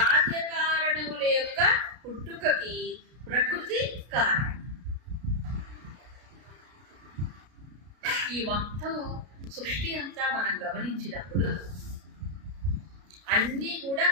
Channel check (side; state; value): left; late; 33 ms